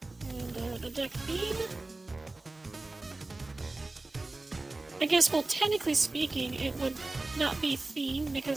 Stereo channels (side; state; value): left; quieter; 3.1 dB